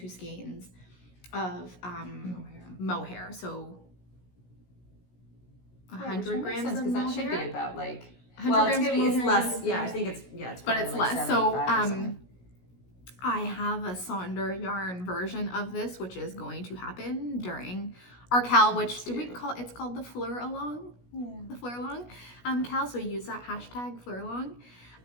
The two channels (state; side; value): late; right; 16 ms